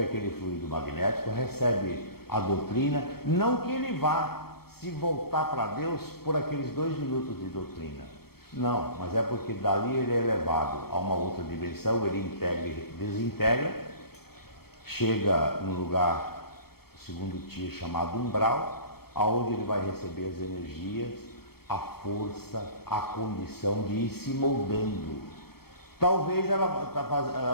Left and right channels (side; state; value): right; late; 0.95 ms